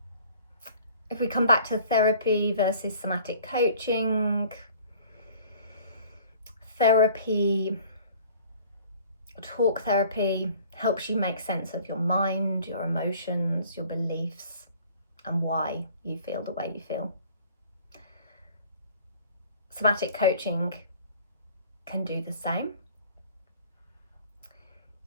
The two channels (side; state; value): both; inverted; correlation -0.51